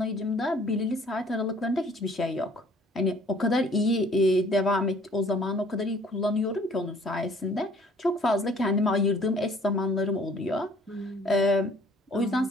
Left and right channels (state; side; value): normal; both; correlation 0.56